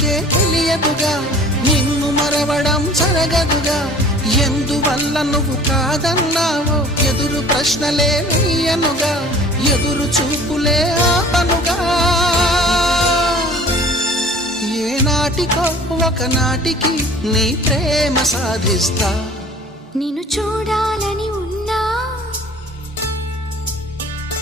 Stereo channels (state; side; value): normal; both; correlation 0.48